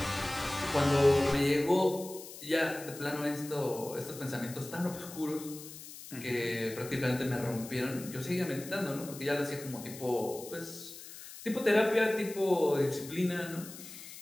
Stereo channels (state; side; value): noise; left; hiss, 14 dB below the sound